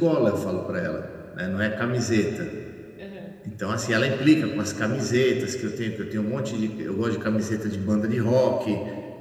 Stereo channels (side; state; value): both; identical; correlation 1.00